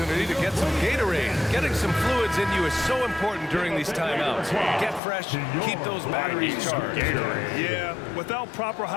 to get some Gatorade. Getting some fluids in you is so important during these timeouts. Get fresh, keep those batteries charged. Yeah, without proper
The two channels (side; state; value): right; drops out; at 5.0 s